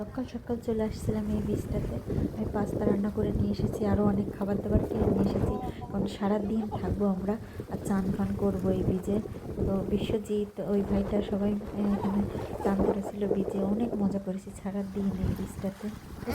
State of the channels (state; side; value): identical; both; correlation 1.00